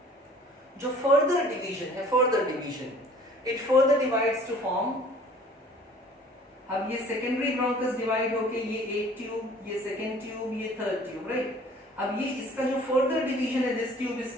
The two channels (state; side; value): normal; both; correlation 0.51